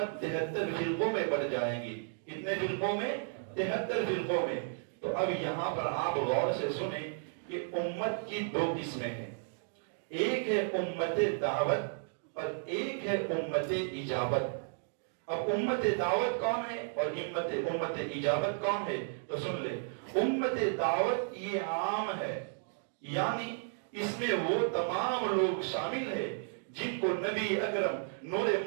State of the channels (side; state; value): left; silent; digital silence